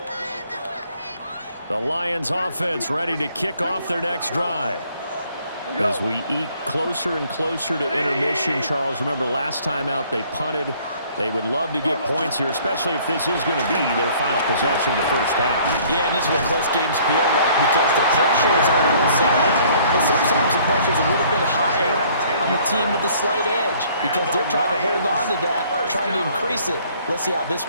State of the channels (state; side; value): inverted; both; correlation -0.58